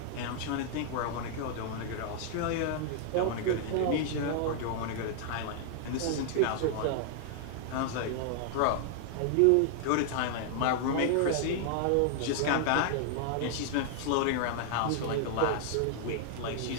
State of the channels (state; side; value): different; both; correlation -0.01